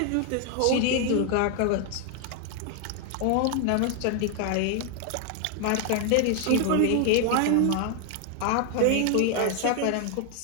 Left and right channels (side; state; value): both; different; correlation 0.00